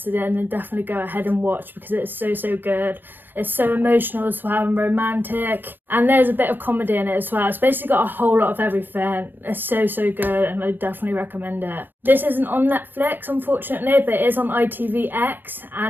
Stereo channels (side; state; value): left; late; 0.093 ms